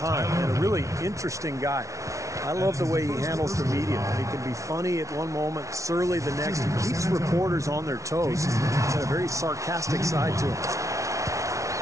and a really interesting guy. I love the way he handles the media. He can be funny at one moment, surly the next. He keeps reporters on their toes. He's got a very sarcastic side to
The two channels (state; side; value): late; left; 0.15 ms